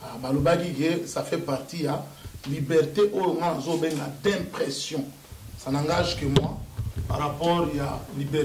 Ba le bagi que ça fait partie à liberté d'impression. Ça n'engage que moi par rapport à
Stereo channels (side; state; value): both; identical; correlation 1.00